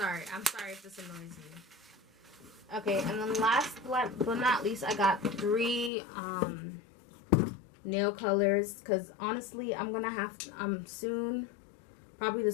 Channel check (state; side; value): drops out; right; at 5.9 s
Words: I'm sorry if this annoys you. Okay, and then last but not least, I got 3... nail colors, because honestly I'm gonna have to, soon, probably